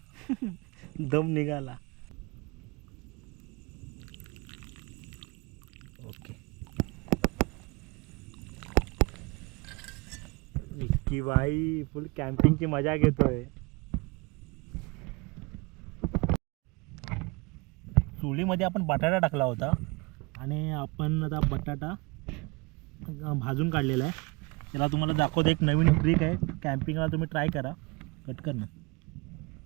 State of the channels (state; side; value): quieter; left; 27.2 dB